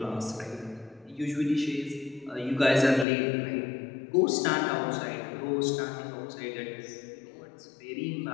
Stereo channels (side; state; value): right; drops out; at 3.1 s